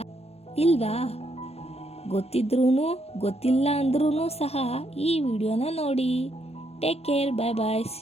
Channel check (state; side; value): late; right; 0.30 ms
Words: ಇಲ್ವಾ? ಗೊತ್ತಿದ್ರೂ ಗೊತ್ತಿಲ್ಲ ಅಂದ್ರೂ ಸಹ ಈ ವಿಡಿಯೋನ ನೋಡಿ. Take care, bye bye,